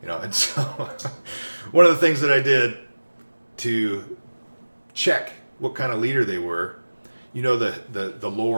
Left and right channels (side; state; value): both; inverted; correlation -1.00